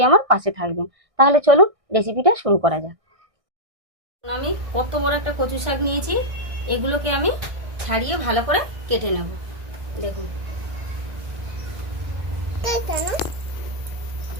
আমার পাশে থাকবেন। তাহলে চলুন রেসিপিটা শুরু করা যাক। আমি কত বড় একটা কচু শাক নিয়েছি, এগুলোকে আমি ছাড়িয়ে ভালো করে কেটে নেব। দেখুন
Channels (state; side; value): late; left; 1.6 ms